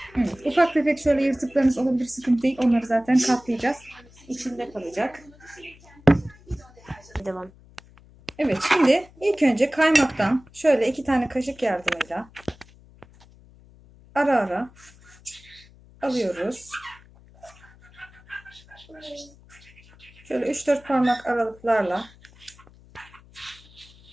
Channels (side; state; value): left; noise; hum, 25 dB below the sound